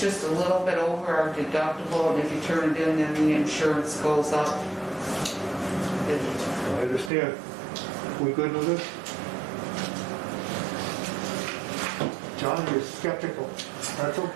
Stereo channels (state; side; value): drops out; left; at 7.1 s